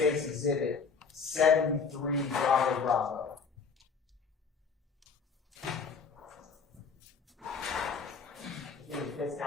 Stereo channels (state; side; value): quieter; right; 5.4 dB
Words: Exhibit 73 Bravo Bravo. I think the defense